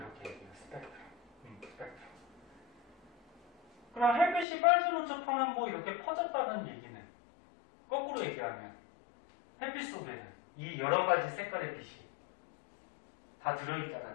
얘기해요. 스펙트럼. 그럼 햇빛이 빨주, 노초, 파남보 이렇게 퍼졌다는 얘기는 거꾸로 얘기하면 햇빛 속에는 이 여러 가지 색깔의 빛이 다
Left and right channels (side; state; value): right; drops out; at 4.5 s